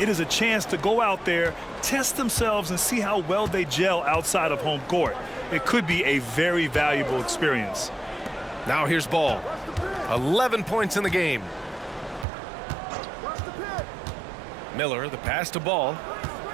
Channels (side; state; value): left; drops out; at 12.2 s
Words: is a chance to go out there, test themselves, and see how well they gel outside of home court. It could be a very valuable experience. Now here's Ball. 11 points in the game. Miller, the pass to Ball.